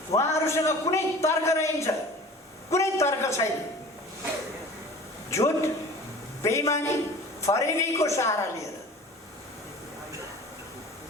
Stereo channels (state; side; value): normal; both; correlation 0.42